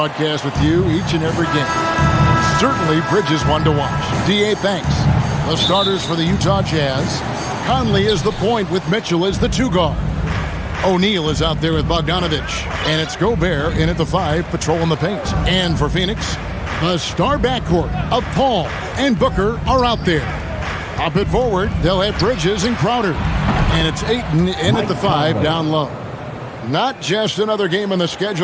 with you each and every game. Certainly, Bridges one to watch. D.A., thanks. The starters for the Utah Jazz. Conley is the point with Mitchell as the 2 guard. O'Neal is out there with Bogdanovich. And it's Gobert in at the 5, patrolling the paint. And for Phoenix, the star backcourt of Paul and Booker are out there. Up it forward, they'll have Bridges and Crowder. And it's Ayton in at the 5, down low. Not just another game on the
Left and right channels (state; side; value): identical; both; correlation 1.00